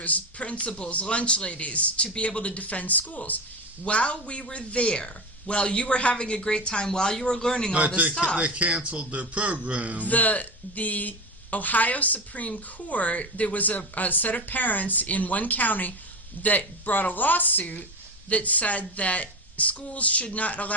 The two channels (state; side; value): normal; both; correlation 0.21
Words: principals, lunch ladies, to be able to defend schools. While we were there, while you were having a great time, while you were learning all this stuff, they canceled their program. The Ohio Supreme Court, there was a set of parents in one county that brought a lawsuit that said that schools should not